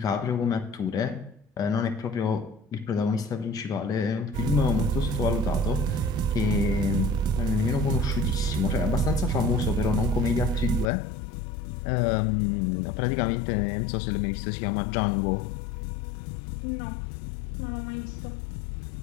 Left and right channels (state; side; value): drops out; right; at 10.9 s